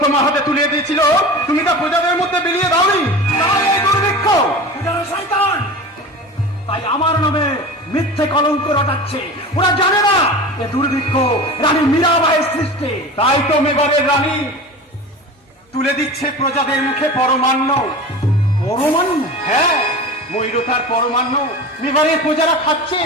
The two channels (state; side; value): normal; both; correlation 0.33